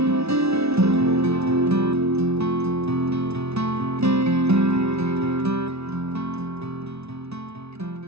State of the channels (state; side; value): late; left; 0.80 ms